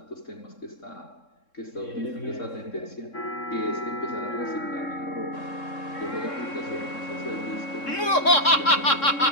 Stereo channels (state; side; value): late; right; 3.7 ms